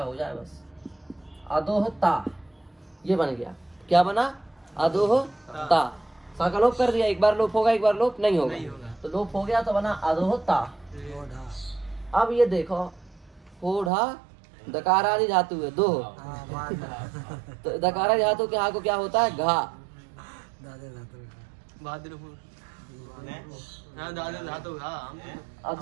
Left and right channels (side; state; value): left; drops out; at 13.9 s